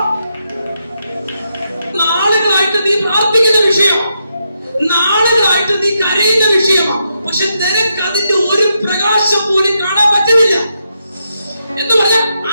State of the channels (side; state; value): both; inverted; correlation -0.82